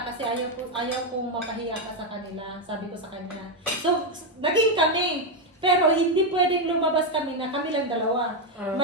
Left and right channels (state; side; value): normal; both; correlation 0.05